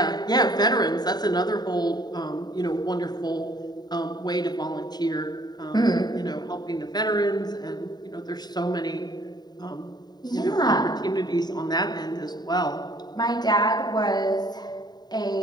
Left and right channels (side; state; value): right; late; 0.20 ms